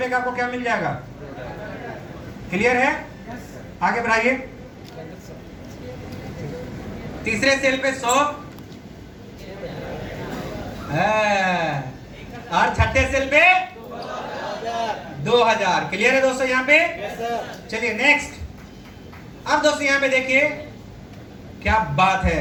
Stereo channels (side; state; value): both; identical; correlation 1.00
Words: का आपको क्या मिल जाएगा। क्लियर है? आगे बढ़ाइए। तीसरे सेल पे 100 और छठे सेल पे 2000। क्लियर है दोस्तों यहाँ पे? चलिए नेक्स्ट। अब दोस्तों यहाँ पे देखिए क्या बात